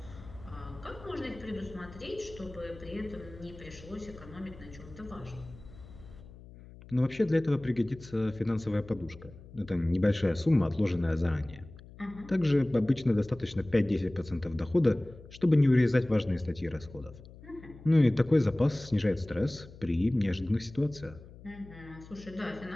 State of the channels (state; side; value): noise; left; hum, 19 dB below the sound